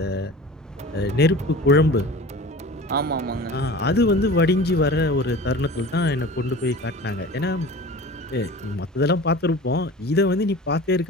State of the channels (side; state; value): both; normal; correlation 0.38